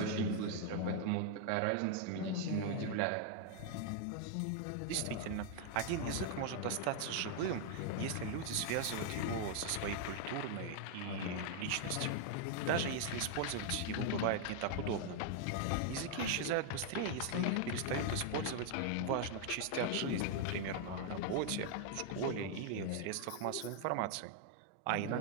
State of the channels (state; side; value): different; both; correlation 0.00